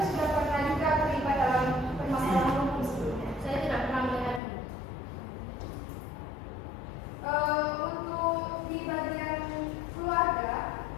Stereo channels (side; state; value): right; drops out; at 4.4 s